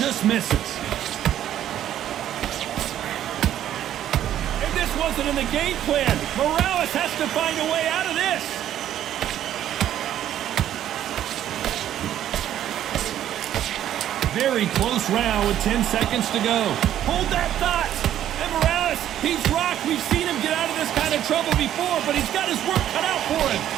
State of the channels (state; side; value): quieter; left; 11.4 dB